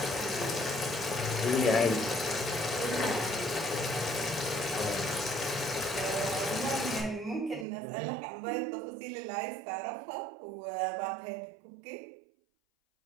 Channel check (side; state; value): left; drops out; at 7.7 s